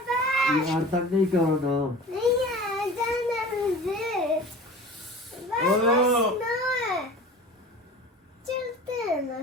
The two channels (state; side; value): normal; both; correlation 0.39